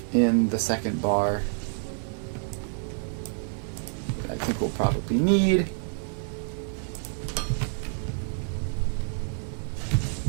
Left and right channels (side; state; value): left; silent; 59 dB below the other